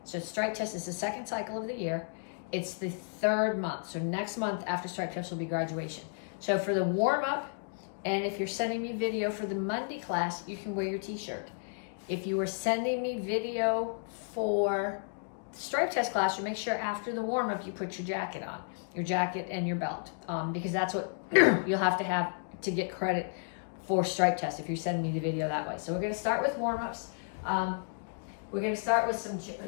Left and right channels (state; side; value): silent; right; digital silence